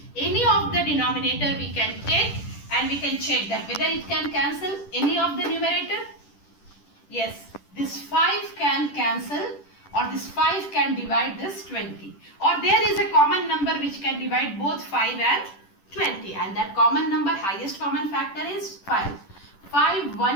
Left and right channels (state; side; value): late; right; 10 ms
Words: any of the denominator we can take and we can check that whether it can cancel any of the numerator. Yes, this 5 can cancel or this 5 can divide this 20. Or there is a common number which can divide both 5 and 20. And that common number, highest common factor is 5. 5